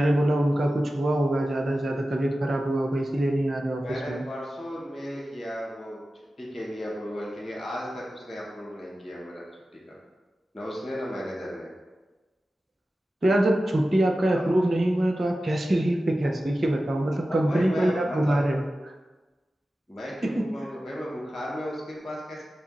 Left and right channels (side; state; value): both; normal; correlation 0.94